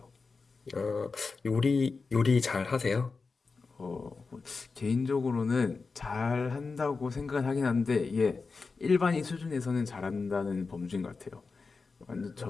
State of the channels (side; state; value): right; quieter; 4.4 dB